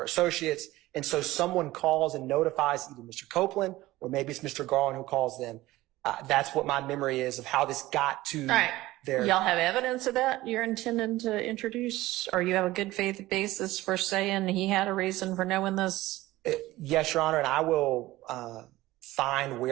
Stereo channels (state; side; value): quieter; left; 17.6 dB